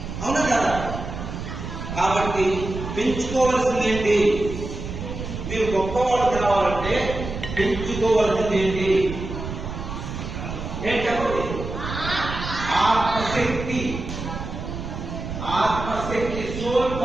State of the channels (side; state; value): right; noise; rumble, 7 dB below the sound